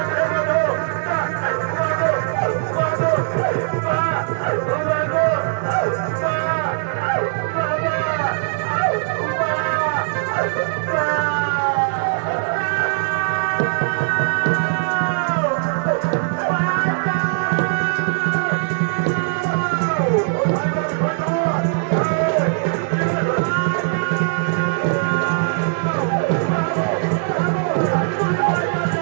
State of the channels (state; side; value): silent; left; digital silence